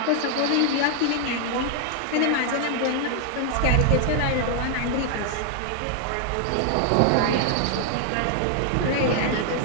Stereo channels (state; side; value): different; both; correlation 0.00